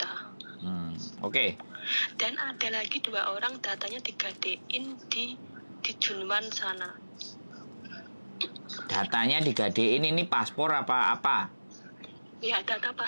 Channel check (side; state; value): both; inverted; correlation -1.00